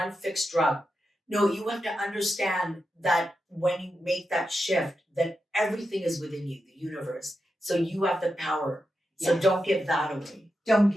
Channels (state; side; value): normal; both; correlation 0.88